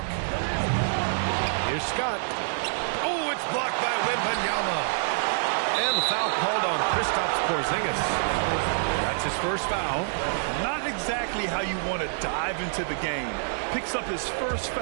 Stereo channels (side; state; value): left; silent; digital silence